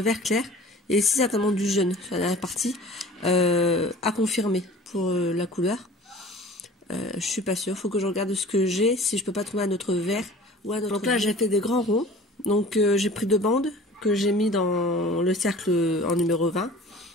vert clair, et ici certainement du jaune sur la dernière partie, à confirmer pour la couleur. Je suis pas sûre, faut que je regarde ce que j'ai, si je peux pas trouver un autre vert ou un autre. Donc là j'ai fait des grands ronds, donc j'ai pris 2 bandes que j'ai mis dans le cercle en numéro 20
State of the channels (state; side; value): normal; both; correlation 0.44